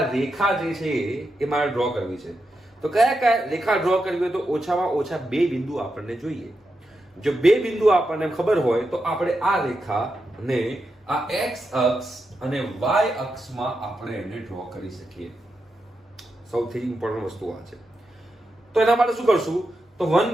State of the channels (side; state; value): both; normal; correlation 0.87